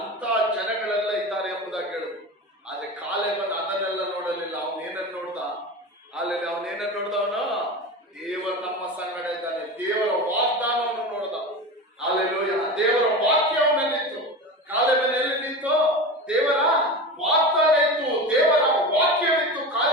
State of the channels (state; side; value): normal; both; correlation 0.27